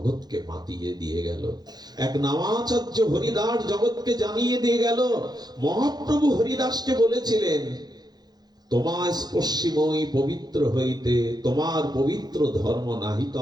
মাতিয়ে দিয়ে গেল। এক নামাচার্য হরিদাস জগৎকে জানিয়ে দিয়ে গেল। মহাপ্রভু হরিদাসকে বলেছিলেন, তোমার স্পর্শিময়ী পবিত্র হইতে তোমার পবিত্র ধর্ম নাহি তো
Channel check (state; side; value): late; left; 0.20 ms